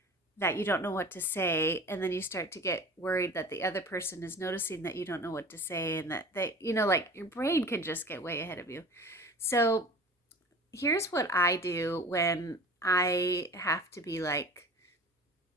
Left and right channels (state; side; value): normal; both; correlation 0.40